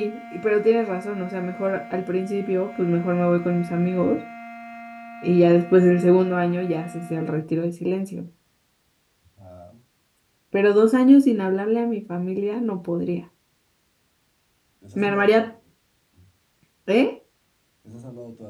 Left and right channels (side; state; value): both; identical; correlation 1.00